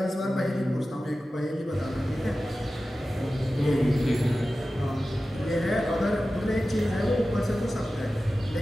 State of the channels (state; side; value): normal; both; correlation 0.94